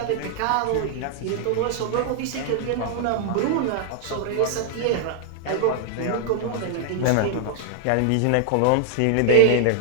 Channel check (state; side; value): different; both; correlation 0.00